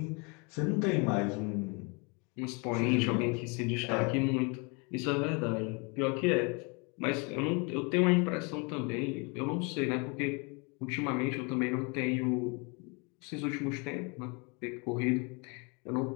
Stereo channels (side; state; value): right; quieter; 31.8 dB